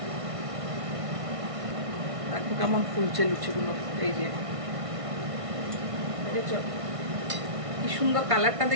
দেখো কেমন ফুলছে লুচিগুলো, এই যে দেখেছো কি সুন্দর কালারটা,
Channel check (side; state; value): left; late; 1.6 ms